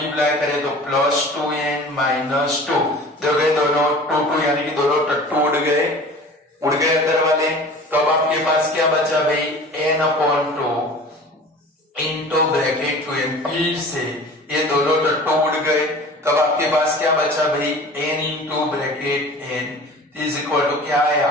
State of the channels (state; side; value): normal; both; correlation 0.41